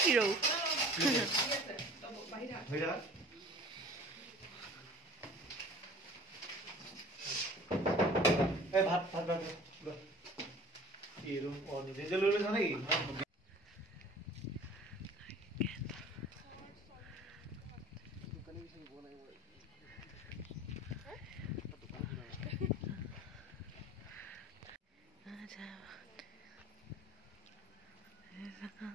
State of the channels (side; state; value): both; normal; correlation 0.45